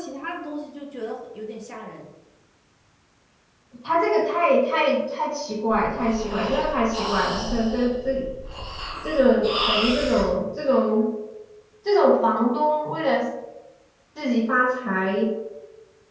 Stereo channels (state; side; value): identical; both; correlation 1.00